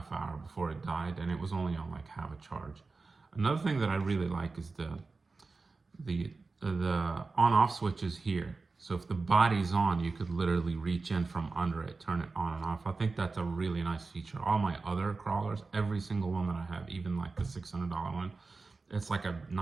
hour before it died, and it was only on like half a charge. Another thing that I really like is the on-off switch is here. So if the body's on, you could literally reach in from under it, turn it on and off. I think that's a really nice feature. All my other crawlers, every single one that I have, even like the $600 one, it's like a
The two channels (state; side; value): quieter; left; 4.0 dB